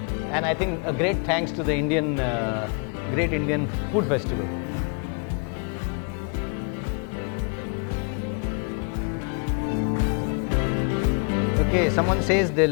And I think a great thanks to the Great Indian Food Festival. Okay, someone says they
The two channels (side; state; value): right; quieter; 39.5 dB